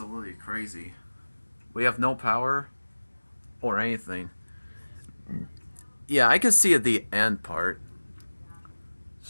crazy. We have no power or anything. Yeah, I can see at the end part.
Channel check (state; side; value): inverted; both; correlation -1.00